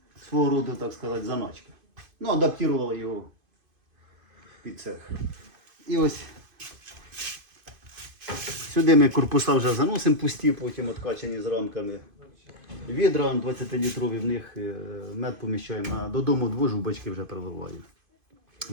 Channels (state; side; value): late; left; 2.5 ms